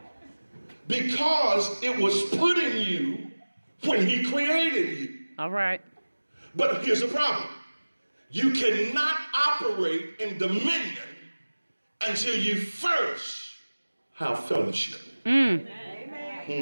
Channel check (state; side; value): inverted; both; correlation -1.00